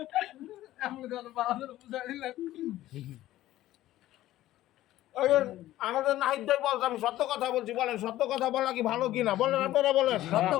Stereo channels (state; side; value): quieter; right; 14.7 dB